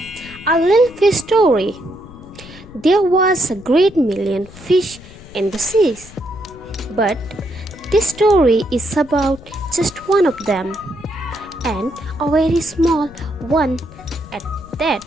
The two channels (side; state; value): left; noise; rumble, 19 dB below the sound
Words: A little fish story. There was a great million fish in the seas, but this story is about just one of them, and a very small one at that.